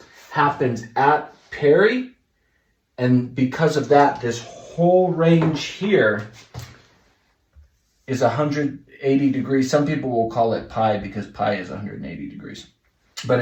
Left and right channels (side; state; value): both; identical; correlation 1.00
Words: happens at peri. And because of that, this whole range here is 180 degrees. Some people will call it pi because pi is 180 degrees. But